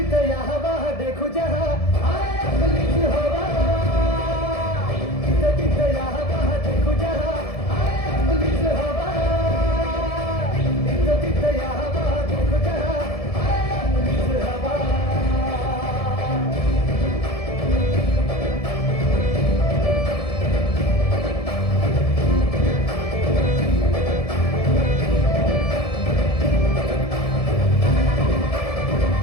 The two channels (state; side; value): late; right; 1.7 ms